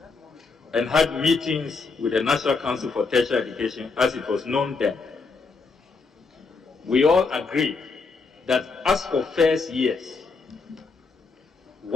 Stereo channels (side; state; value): right; quieter; 4.4 dB